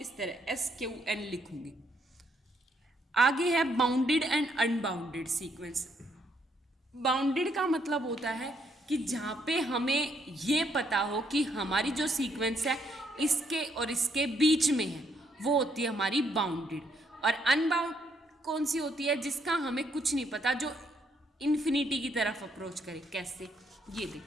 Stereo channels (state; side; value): normal; both; correlation 0.72